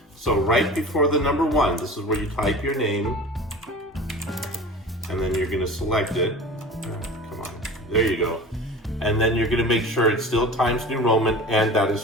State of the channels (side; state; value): both; normal; correlation 0.38